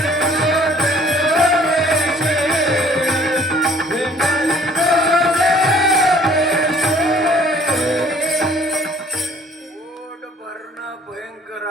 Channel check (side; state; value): both; normal; correlation 0.56